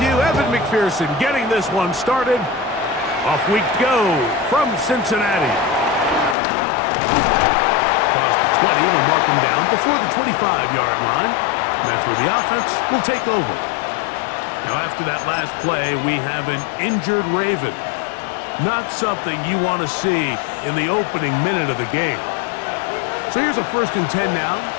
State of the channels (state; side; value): drops out; right; at 6.4 s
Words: you. Evan McPherson getting this one started. Off we go from Cincinnati. Across the 20, we'll mark him down before the 25-yard line. And that's where the offense will take over. Now, after that last play, we have an injured Raven. Not something you want to see in the opening minute of the game. So here's a 1st and 10 now.